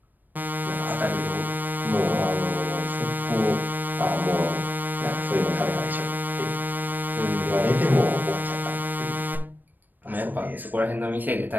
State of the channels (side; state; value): left; late; 0.090 ms